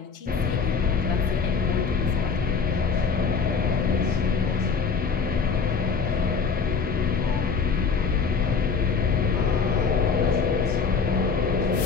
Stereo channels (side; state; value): right; quieter; 5.4 dB